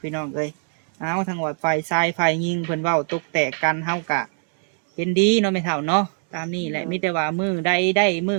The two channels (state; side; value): silent; left; 55 dB below the other